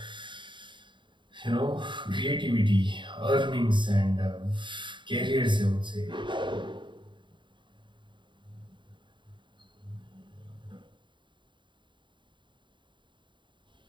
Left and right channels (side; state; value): left; late; 0.23 ms